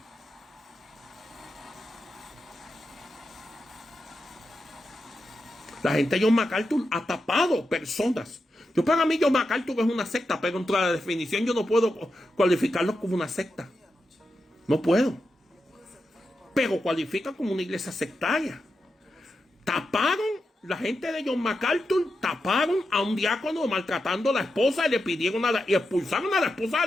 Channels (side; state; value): both; normal; correlation 0.88